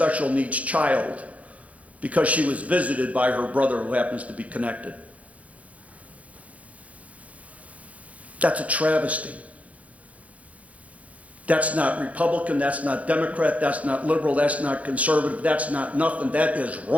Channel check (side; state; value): left; late; 0.067 ms